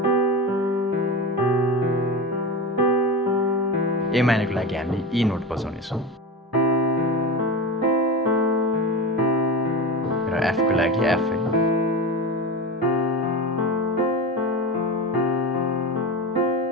ए माइनरको लागि हामीले ई नोट बजाउनेछौँ र एफको लागि एफ है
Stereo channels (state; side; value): normal; both; correlation 0.24